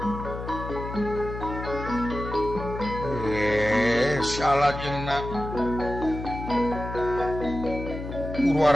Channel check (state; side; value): noise; left; hum, 8 dB below the sound